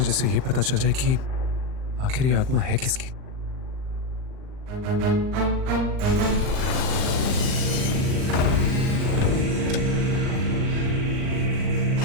ये पता चल जाए कि आखिर ये आत्मा है किसकी।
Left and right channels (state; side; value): late; left; 39 ms